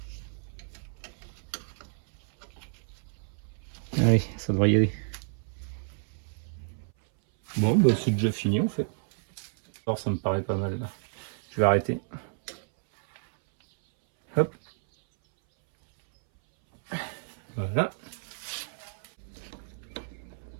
Allez, ça devrait y aller. Bon, bah c'est déjà fini en fait. Alors ça me paraît pas mal là. Je vais arrêter. Hop. Voilà.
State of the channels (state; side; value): silent; left; 58 dB below the other